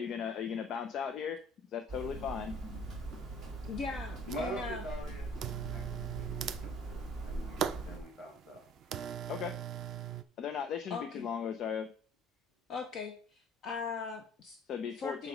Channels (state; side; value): normal; both; correlation 0.52